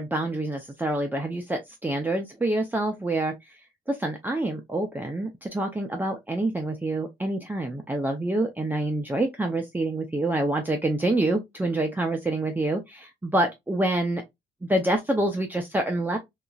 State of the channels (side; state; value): both; normal; correlation 0.75